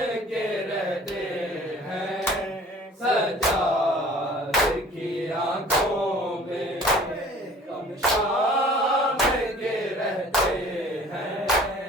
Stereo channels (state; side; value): normal; both; correlation 0.49